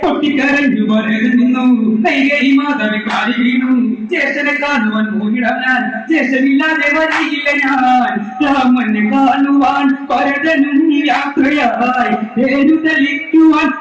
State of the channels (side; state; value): both; identical; correlation 1.00